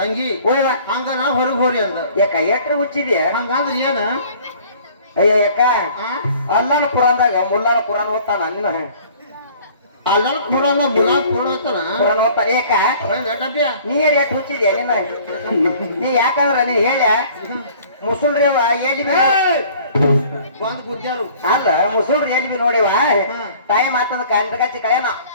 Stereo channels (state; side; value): inverted; both; correlation -0.52